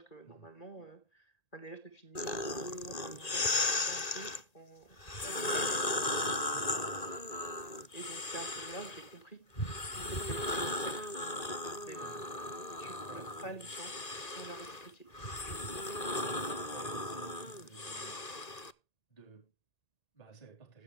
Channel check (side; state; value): right; late; 1.9 ms